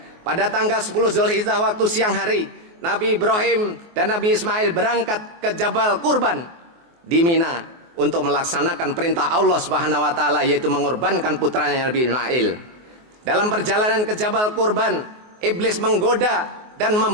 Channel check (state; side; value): late; left; 24 ms